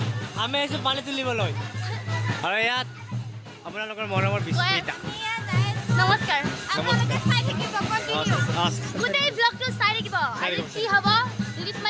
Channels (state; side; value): identical; both; correlation 1.00